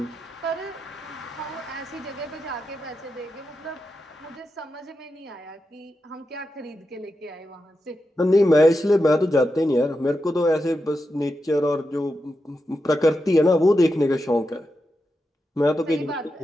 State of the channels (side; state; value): both; normal; correlation 0.88